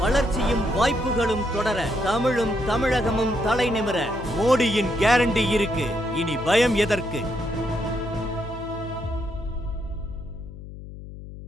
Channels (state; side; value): noise; left; hum, 13 dB below the sound